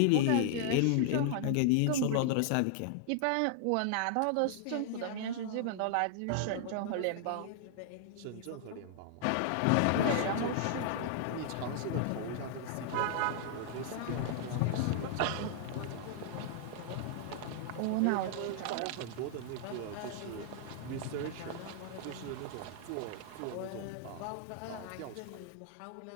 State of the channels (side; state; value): both; different; correlation -0.01